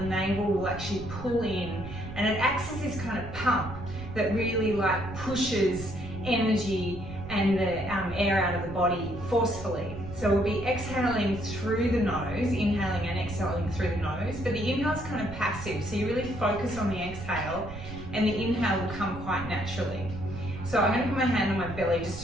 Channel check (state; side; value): noise; right; rumble, 11 dB below the sound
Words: navel will actually pull in, and it acts as this kind of pump that really pushes energy and the air out of the body forcefully. So we'll be exhaling through the nose, inhaling and exhaling through the nose, but the inhale is kind of passive, so you really focus on the exhale, and the inhale will come quite naturally. So I'm going to put my hand on my belly just